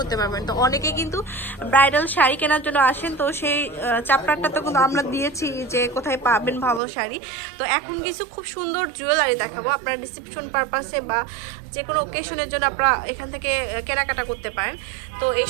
পারবেন। তো অনেকে কিন্তু ব্রাইডাল শাড়ি কেনার জন্য আসেন, তো সেই চ্যাপ্টারটা তো কিন্তু আমরা দিয়েছি যে কোথায় পাবেন ভালো শাড়ি। তো এখন কিছু খুব সুন্দর জুয়েলারি দেখাবো, আপনারা রিসেপশন পারপাসে বা যে কোনো ওকেশনের জন্য আপনারা এখান থেকে কেনাকাটা করতে পারেন। তো এই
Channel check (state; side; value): drops out; left; at 6.8 s